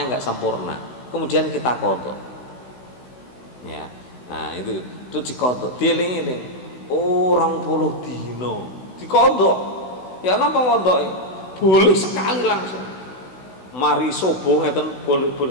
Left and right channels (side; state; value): right; late; 16 ms